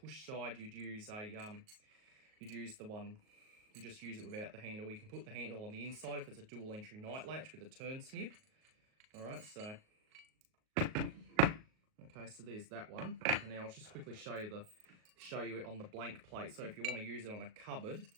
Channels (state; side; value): late; left; 38 ms